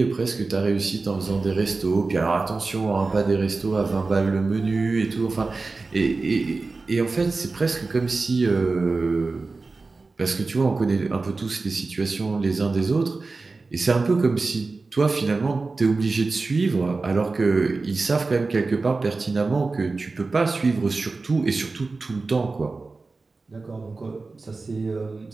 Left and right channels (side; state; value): left; quieter; 3.8 dB